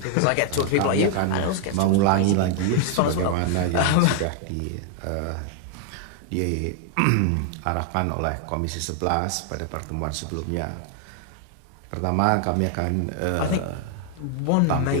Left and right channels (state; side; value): different; both; correlation 0.00